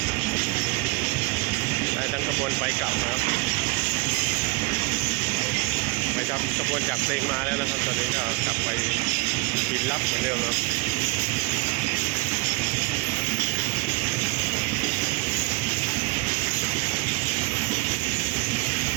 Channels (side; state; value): left; quieter; 26.2 dB